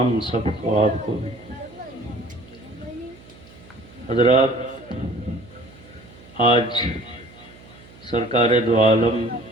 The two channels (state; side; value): noise; right; hum, 22 dB below the sound